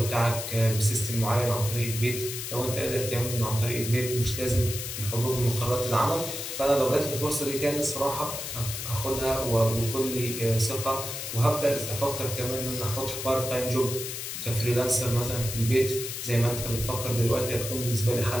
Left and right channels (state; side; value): noise; left; hiss, 6 dB below the sound